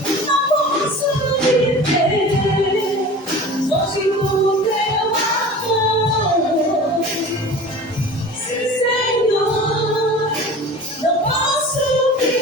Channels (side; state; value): both; normal; correlation 0.39